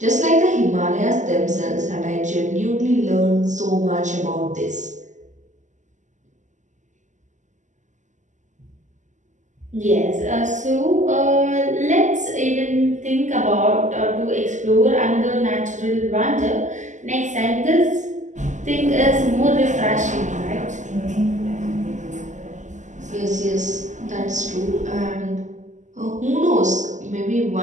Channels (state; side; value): late; left; 0.35 ms